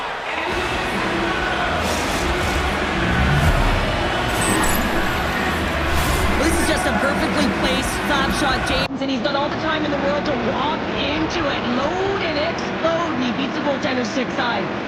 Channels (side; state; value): both; identical; correlation 1.00